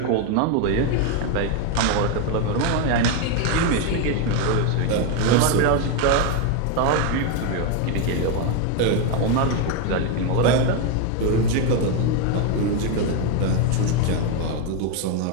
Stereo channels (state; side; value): different; both; correlation 0.02